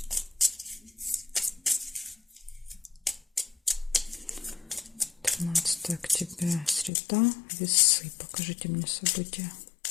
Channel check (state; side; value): drops out; right; at 6.9 s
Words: 13 октября, среда, весы. Покажите мне события.